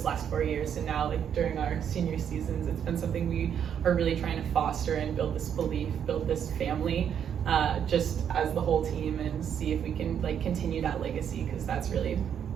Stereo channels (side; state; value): left; quieter; 8.5 dB